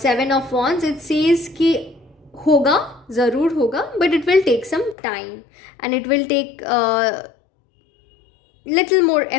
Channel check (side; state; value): right; drops out; at 5.0 s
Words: of wands, it says कि होगा, ज़रूर होगा, but it will take some time and it will take little more